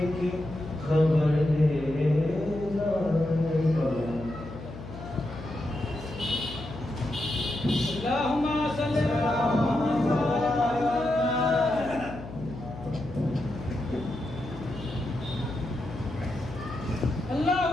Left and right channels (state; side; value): noise; left; hum, 12 dB below the sound